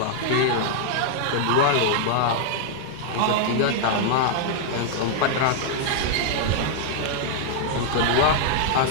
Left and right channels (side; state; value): both; different; correlation -0.01